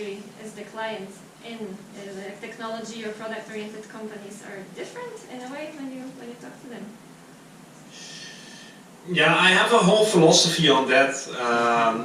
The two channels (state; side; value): identical; both; correlation 1.00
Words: is the client in? The technology or product-oriented companies are different in a way when you talk to them? Yeah, I have a whole philosophy on that.